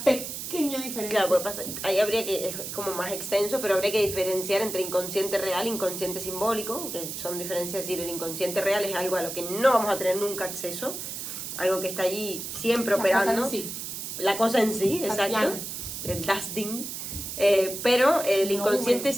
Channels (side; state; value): right; noise; hiss, 7 dB below the sound